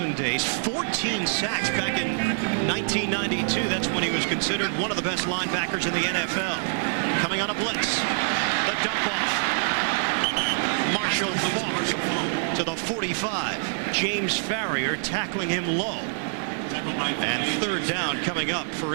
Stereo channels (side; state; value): left; silent; digital silence